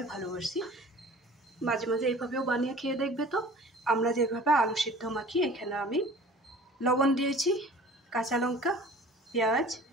ভালোবাসি, মাঝে মাঝে এইভাবেও বানিয়ে খেয়ে দেখবে। তো আমরা যেভাবে আলু সিদ্ধ মাখি, এখানে আমি লবণ দিয়েছি, কাঁচা লঙ্কা, পেঁয়াজ,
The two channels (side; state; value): both; normal; correlation 0.46